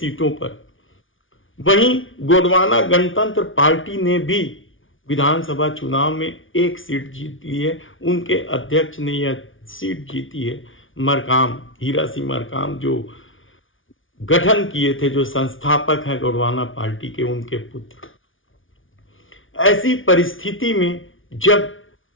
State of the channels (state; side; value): late; right; 0.57 ms